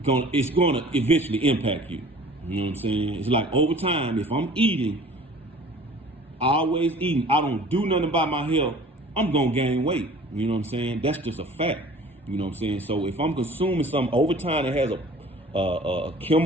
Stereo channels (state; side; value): normal; both; correlation 0.47